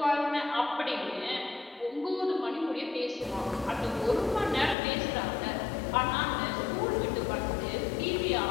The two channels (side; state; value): right; drops out; at 4.8 s